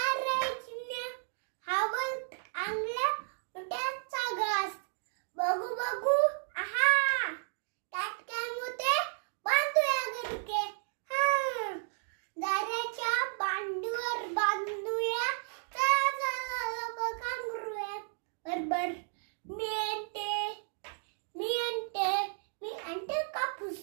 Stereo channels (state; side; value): silent; left; digital silence